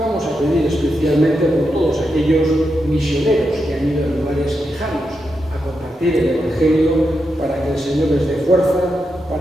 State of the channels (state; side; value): normal; both; correlation 0.86